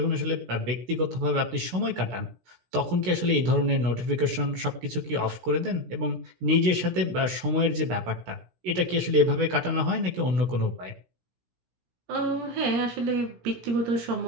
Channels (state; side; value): late; left; 16 ms